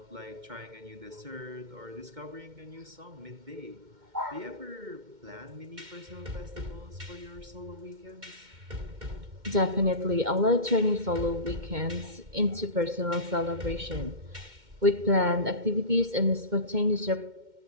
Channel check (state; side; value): late; left; 2.1 ms